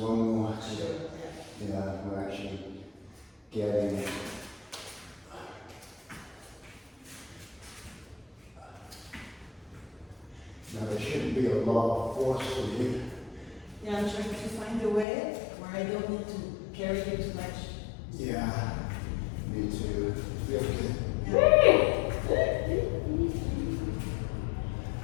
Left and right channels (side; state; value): right; drops out; at 15.1 s